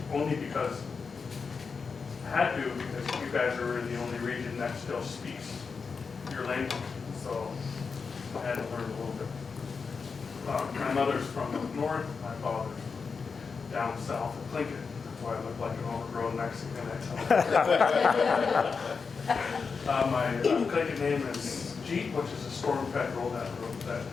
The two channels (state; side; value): quieter; right; 5.2 dB